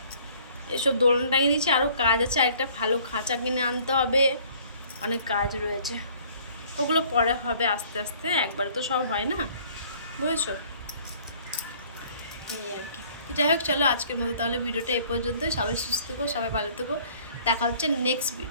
এসব দোলনা টাঙিয়ে দিয়েছি, আরও কাজ আছে, আরেকটা ভালো খাঁচা কিনে আনতে হবে, অনেক কাজ রয়েছে, ওগুলো পরে হবে আস্তে আস্তে, একবারে তো সব হয় না, বুঝেছো? এই আর কি। যাই হোক, চলো আজকের মতো তাহলে ভিডিওটা এ পর্যন্তই। সবাই সুস্থ থেকো, সবাই ভালো থেকো, দেখা হচ্ছে নেক্সট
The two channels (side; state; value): both; inverted; correlation -0.56